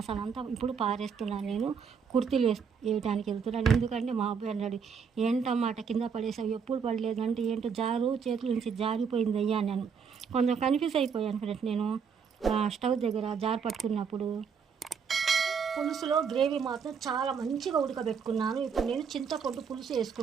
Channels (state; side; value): quieter; left; 6.4 dB